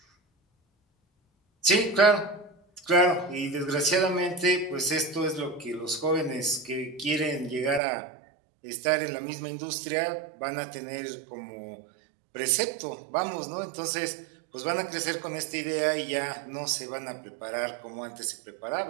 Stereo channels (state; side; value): drops out; left; at 7.8 s